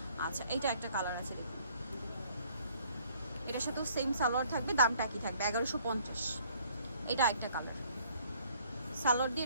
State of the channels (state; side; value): inverted; both; correlation -0.60